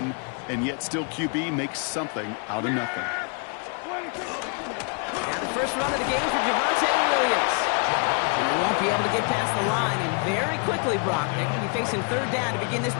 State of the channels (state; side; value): quieter; right; 37.7 dB